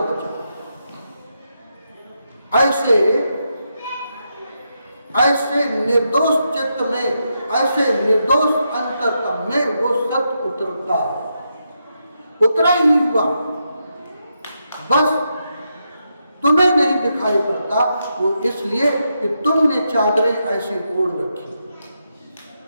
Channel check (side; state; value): both; inverted; correlation -0.83